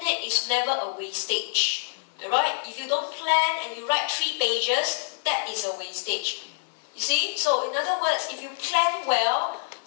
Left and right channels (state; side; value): silent; right; digital silence